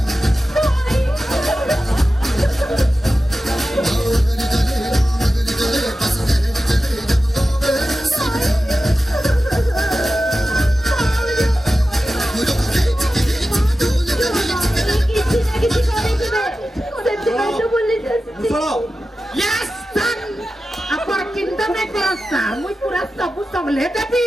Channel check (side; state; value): both; normal; correlation 0.94